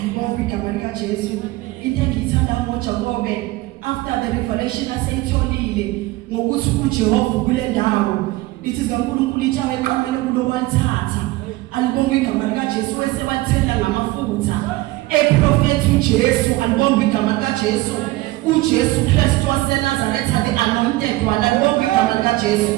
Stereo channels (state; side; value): quieter; left; 19.1 dB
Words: igama lika Jesu. Into engiyithanda ngoJakobe after the revelation aseyitholile ngokuthi uJehova kule ndawo lithi zikaNkulunkulu itshawe eqamele kulowathatha. Alibonga igama lika Jesu wesewathela ngamafutha eprofethi uJesu. Alibonga igama lika Jesu. uJesu Kristu waseNazaretha the anointed one. Alibonga igama lika Jesu.